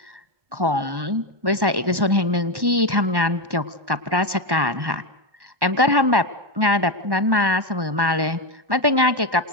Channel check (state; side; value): late; left; 1.1 ms